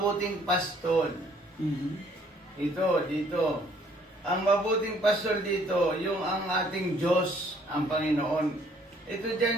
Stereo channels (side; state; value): both; normal; correlation 0.62